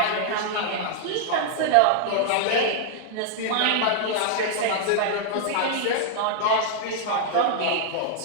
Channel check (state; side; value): different; both; correlation -0.01